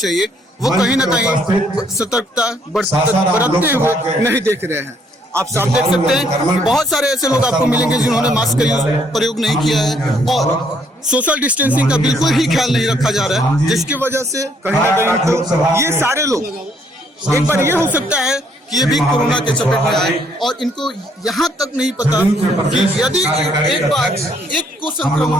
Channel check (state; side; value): normal; both; correlation 0.68